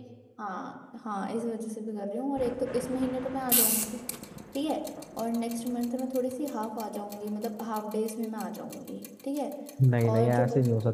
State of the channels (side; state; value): both; identical; correlation 1.00